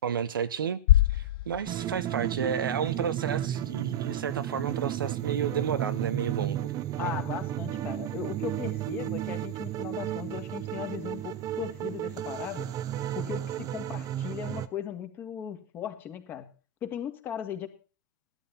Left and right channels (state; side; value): normal; both; correlation -0.01